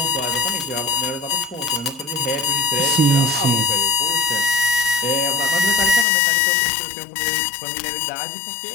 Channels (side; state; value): right; drops out; at 6.1 s